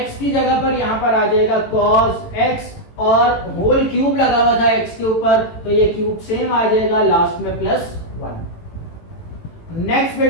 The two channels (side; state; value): right; late; 18 ms